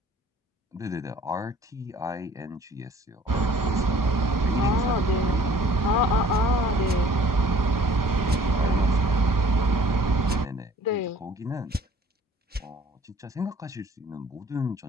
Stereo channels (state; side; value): normal; both; correlation 0.53